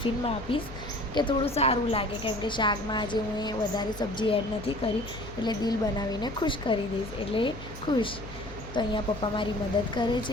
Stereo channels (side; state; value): left; noise; hum, 13 dB below the sound